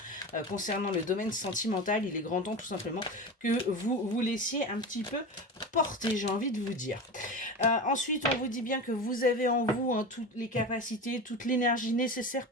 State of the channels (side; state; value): both; normal; correlation 0.26